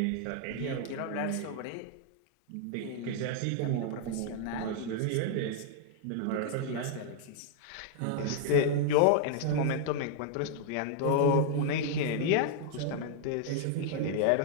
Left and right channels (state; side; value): different; both; correlation -0.01